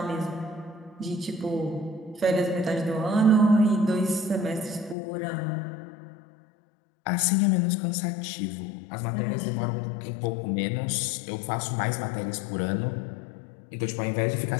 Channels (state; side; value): drops out; right; at 5.0 s